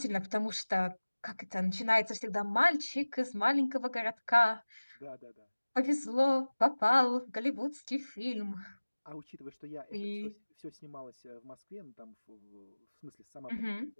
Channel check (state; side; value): inverted; both; correlation -1.00